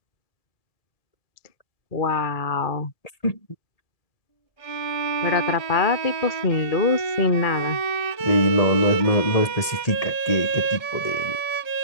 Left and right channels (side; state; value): right; late; 1.8 ms